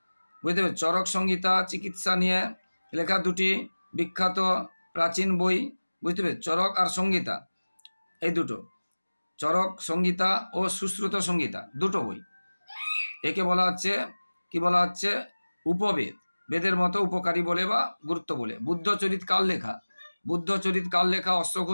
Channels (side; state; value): both; inverted; correlation -1.00